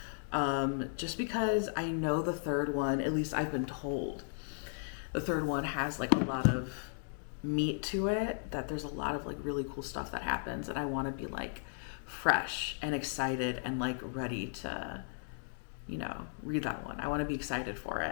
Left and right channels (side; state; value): right; silent; digital silence